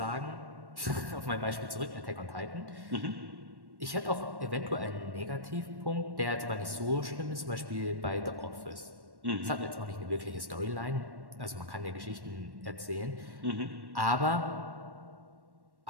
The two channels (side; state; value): left; late; 1.1 ms